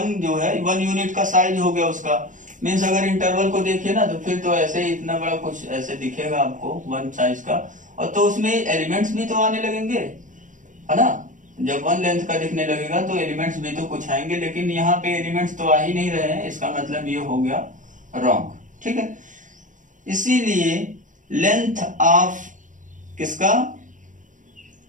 जो है 1 यूनिट का साइज हो गया उसका, मीन्स अगर इंटरवल को देखिए ना, तो फिर तो ऐसे ही इतना बड़ा कुछ ऐसे दिखेगा आपको 1 साइज का, और तो उसमें एलिमेंट्स भी तो आने लगेंगे, है ना। जब 1 लेंथ का दिखने लगेगा तो एलिमेंट्स भी तो कुछ आएंगे, लेकिन यहाँ पे एलिमेंट्स तो आ ही नहीं रहे हैं, इसका मतलब ये हो गया रॉन्ग, ठीक है। इसीलिए लेंथ ऑफ किसका,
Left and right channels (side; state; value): left; late; 0.37 ms